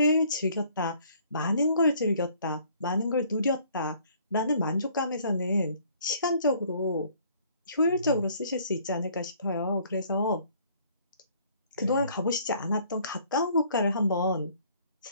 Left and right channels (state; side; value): inverted; both; correlation -0.59